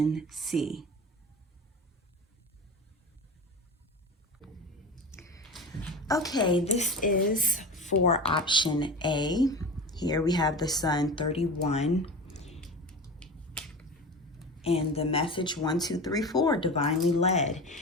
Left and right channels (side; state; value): both; normal; correlation 0.30